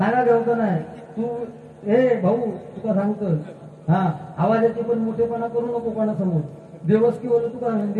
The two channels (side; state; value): both; identical; correlation 1.00